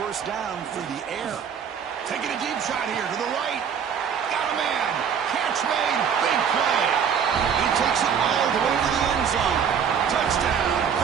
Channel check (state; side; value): quieter; left; 7.4 dB